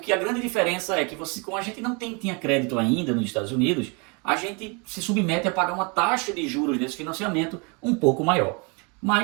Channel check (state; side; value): quieter; left; 32.1 dB